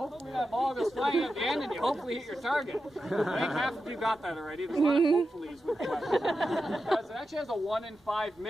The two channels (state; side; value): normal; both; correlation 0.90